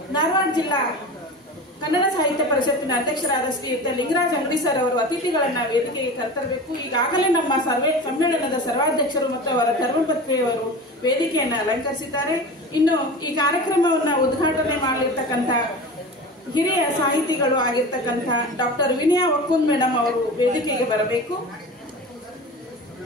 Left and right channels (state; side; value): normal; both; correlation 0.32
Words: ಧಾರವಾಡ ಜಿಲ್ಲಾ ಕನ್ನಡ ಸಾಹಿತ್ಯ ಪರಿಷತ್ತಿನ ಅಧ್ಯಕ್ಷರಾದ ಶ್ರೀಯುತ ಲಿಂಗರಾಜ್ ಅಂಗಡಿ ಸರ್ ಅವರು ಅತಿಥಿಗಳನ್ನ ವೇದಿಕೆಗೆ ಕರೆತರಬೇಕು. ಈಗಾಗಲೇ ನಮ್ಮ ಸಮ್ಮೇಳನದ ಸರ್ವಾಧ್ಯಕ್ಷರು ಮತ್ತು ಅವರ ಧರ್ಮಪತ್ನಿಯವರು ವೇದಿಕೆಯನ್ನು ಅಲಂಕರಿಸಿದ್ದಾರೆ. ಇನ್ನು ಈ ಕಾರ್ಯಕ್ರಮವನ್ನ ಉದ್ಘಾಟನೆ ಮಾಡಲಿರ್ತಕ್ಕಂಥ ಹಿರಿಯ ಸಾಹಿತಿಗಳು ಆಗಿರ್ತಕ್ಕಂಥ ಡಾಕ್ಟರ್ ವಿನಯ ಒಕ್ಕುಂದ್ ಮೇಡಮ್ ಅವರು ವೇದಿಕೆಗೆ ಬರಬೇಕು.